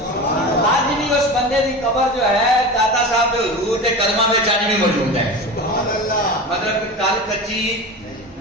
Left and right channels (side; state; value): both; normal; correlation 0.29